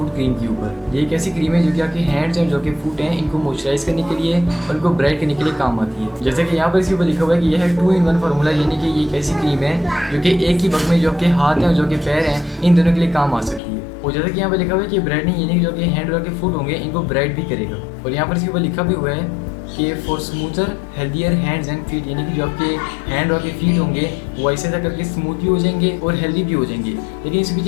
cream के ऊपर। ये एक ऐसी क्रीम है जो कि आपके हैंड्स हैं, जो कि फुट हैं, इनको मॉइस्चराइज करने के लिए और इनको ब्राइट करने के लिए काम आती है। जैसे कि यहाँ पर इसके ऊपर लिखा हुआ है कि यह है 2-in-1 फार्मूला, यानी कि ये एक ऐसी क्रीम है जो कि एक ही वक्त में जो आपके हाथ हैं और जो कि पैर हैं, इन दोनों के लिए काम आ सकती है। और जैसे कि यहाँ पर लिखा हुआ है कि ब्राइटनिंग यानी कि जो कि हैंड और के फुट होंगे इनको ब्राइट भी करेगा। और यहाँ पर इसके ऊपर लिखा भी हुआ है कि for smoother healthier hands and feet, यानी कि जो आपके हैंड और के फीट होंगे वो ऐसे ऐसा करके स्मूथ भी हो जाएंगे और हेल्दी भी हो जाएंगे। लेकिन इसकी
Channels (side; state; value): right; drops out; at 13.6 s